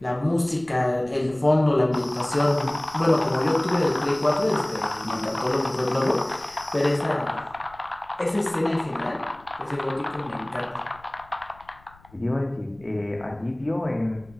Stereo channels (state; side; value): noise; left; rumble, 26 dB below the sound